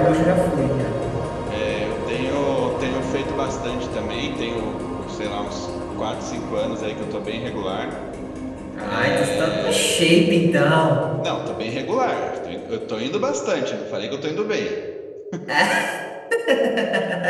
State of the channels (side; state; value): both; identical; correlation 1.00